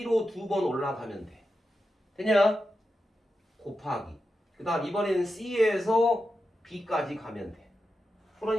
2번 올라가면 돼. 되냐? 곱하기. 그 다음 이번에는 C에서 B까지 가면 돼.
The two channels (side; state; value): both; normal; correlation 0.90